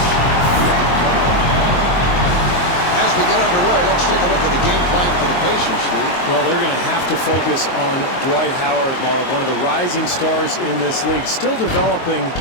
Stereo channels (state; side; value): late; right; 22 ms